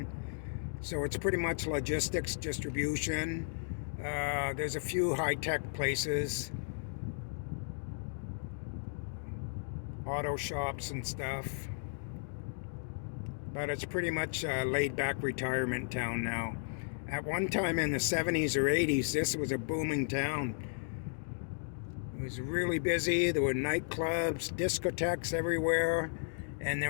So it's pretty much logistics, distribution. There's a few high-tech places, auto shops and stuff. But it's pretty much a laid-back retirement town now. At one time in the 70s or 80s, this was a booming town. It was really busy. There were nightclubs, discotheques everywhere, and they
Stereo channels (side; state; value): right; silent; digital silence